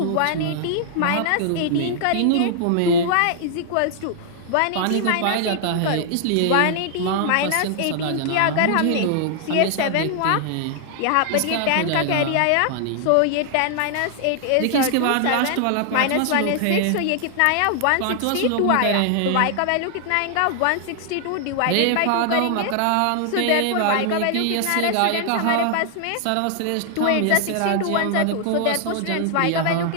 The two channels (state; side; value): different; both; correlation 0.00